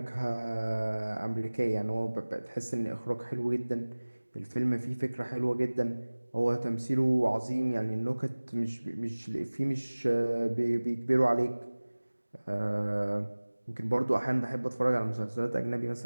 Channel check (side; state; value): both; inverted; correlation -1.00